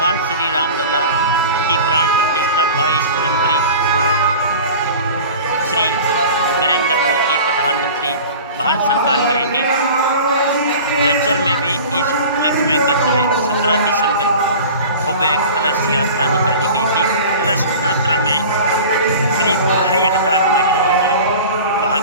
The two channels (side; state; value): both; inverted; correlation -0.38